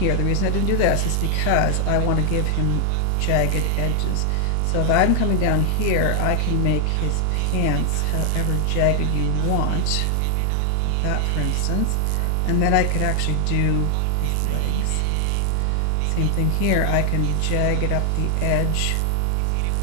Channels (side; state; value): both; different; correlation 0.00